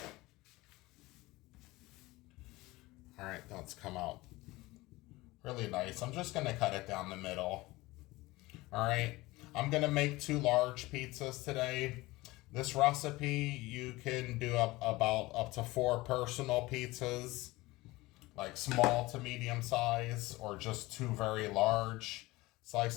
All right, that's come out really nice. I'm just gonna cut it down the middle. All right, I'm gonna make 2 large pizzas today. This recipe, you can do about up to 4 personal pizzas, like small to medium size, or just 2 very large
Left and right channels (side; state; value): right; quieter; 20.4 dB